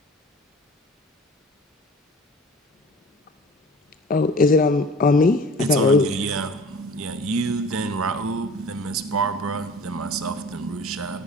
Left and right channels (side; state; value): both; normal; correlation 0.44